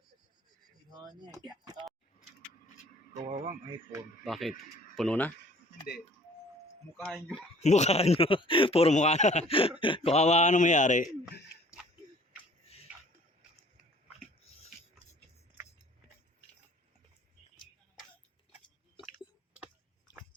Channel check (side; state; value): both; normal; correlation 0.54